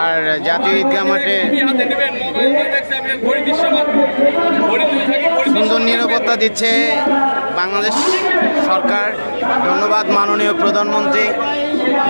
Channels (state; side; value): inverted; both; correlation -1.00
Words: আর জাতীয় ঈদগাহ মাঠে সুন্দর নিরাপত্তা দিচ্ছে বাংলাদেশ সরকার। ধন্যবাদ মাননীয় প্রধানমন্ত্রী,